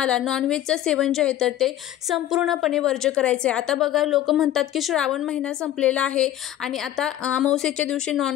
नॉनव्हेजचं सेवन जे आहे तर ते संपूर्णपणे वर्ज्य करायचं आहे। आता बघा लोक म्हणतात की श्रावण महिना संपलेला आहे आणि आता अमावस्येच्या दिवशी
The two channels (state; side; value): quieter; right; 12.6 dB